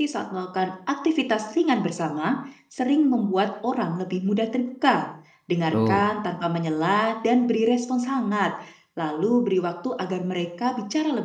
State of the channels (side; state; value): both; identical; correlation 1.00